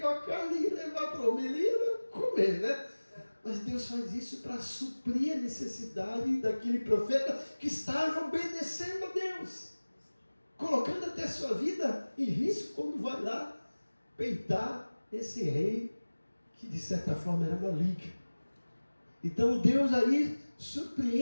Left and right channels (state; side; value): inverted; both; correlation -1.00